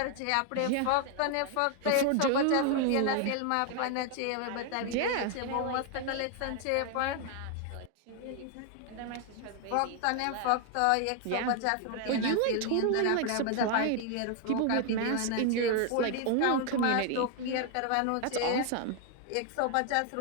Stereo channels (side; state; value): both; different; correlation 0.00